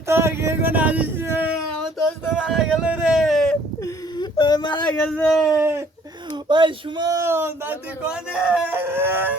তোর কে কোন আসিস রে, আমার দোস্ত মারা গেল রে। ওই মারা গেছে। ওই সুমন দাদি কোনে?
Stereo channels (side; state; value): both; normal; correlation 0.58